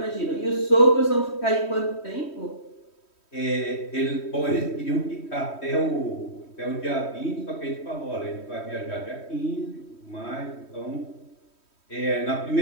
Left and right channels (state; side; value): late; right; 3.1 ms